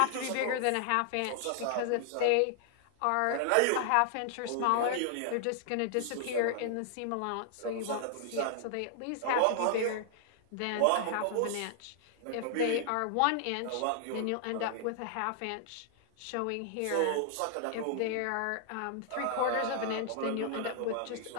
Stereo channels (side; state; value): both; different; correlation -0.01